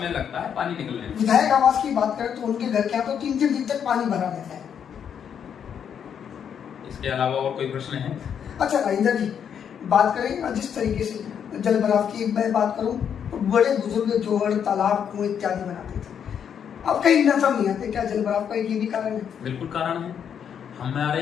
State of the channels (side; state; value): right; quieter; 8.1 dB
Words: लगता है पानी निकलने में। विधायक आवास की बात करें तो उनके घर के यहाँ तो 3-3 दिन तक पानी भरा रहता है। इसके अलावा और कोई प्रश्न है? अच्छा राजेंद्र जी, बात करें जिस तरीके से जल भराव की मैं बात करूं तो बड़े बुजुर्ग जोहड़, तालाब, कुएं इत्यादि बनाते थे, अब कहीं नजर नहीं आते। क्या जल भराव का ये भी कारण है? बिल्कुल कारण है।